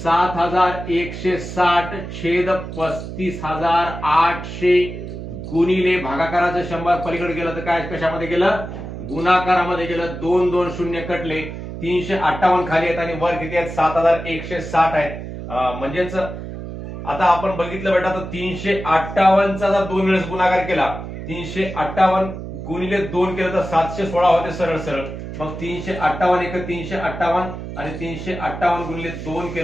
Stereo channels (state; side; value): noise; right; hum, 9 dB below the sound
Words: छेद 35,800 गुणिले भागाकाराचं 100 पलीकडे गेलं तर काय कशामध्ये गेलं, गुणाकारामध्ये गेलं। 2 2 शून्य कटले, 358 खाली आहेत आणि वर किती आहेत 7,160 आहेत। म्हणजेच आता आपण बघितलं बेटा, तर 358 चा जर 2 वेळेस गुणाकार केला, 358 गुणिले 2 केलं तर 716 होते सरळ सरळ। मग 358 एक 358 आणि 358 गुणिले 2